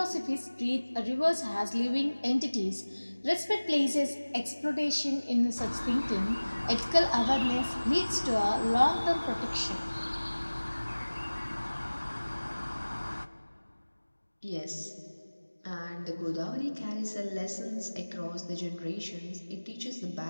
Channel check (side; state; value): both; inverted; correlation -1.00